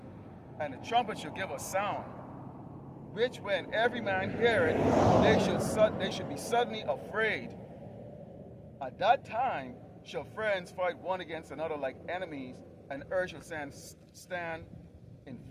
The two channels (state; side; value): identical; both; correlation 1.00